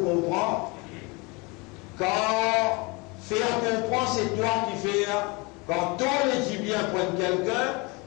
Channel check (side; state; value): right; quieter; 27.7 dB